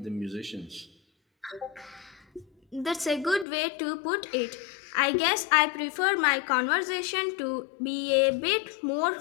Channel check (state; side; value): drops out; right; at 3.5 s